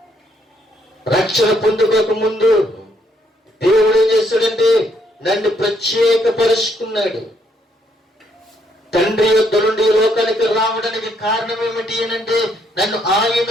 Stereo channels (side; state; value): both; normal; correlation 0.71